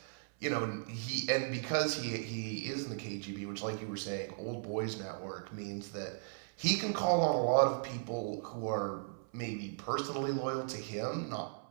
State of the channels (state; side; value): silent; left; 53 dB below the other